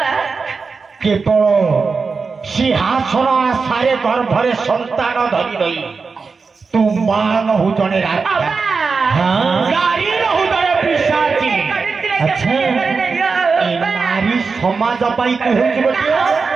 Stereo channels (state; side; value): quieter; left; 4.7 dB